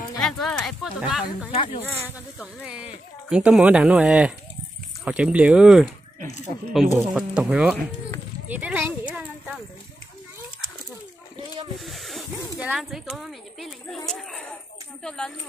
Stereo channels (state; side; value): normal; both; correlation 0.88